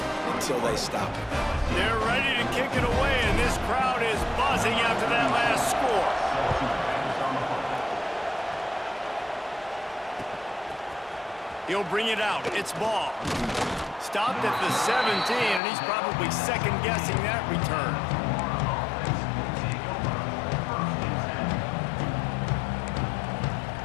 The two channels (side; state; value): right; drops out; at 15.6 s